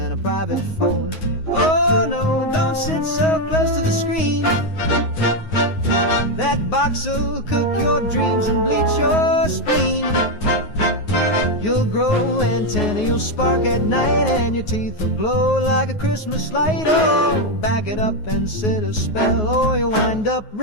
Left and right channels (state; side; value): late; right; 9.4 ms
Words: a private phone. Oh no, don't sit so close to the screen. That box'll cook your dreams and bleach your spleen. You'll grow antennae, you'll spark at night, and your teeth will glow like a Christmas light. Oh, back it up and sit a spell, or you'll wind up